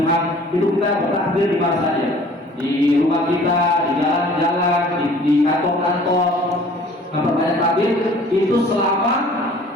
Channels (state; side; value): normal; both; correlation 0.51